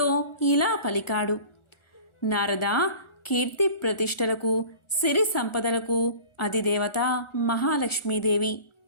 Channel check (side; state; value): right; late; 1.4 ms